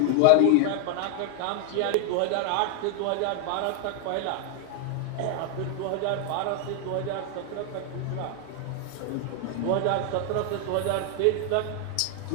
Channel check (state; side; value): different; both; correlation 0.00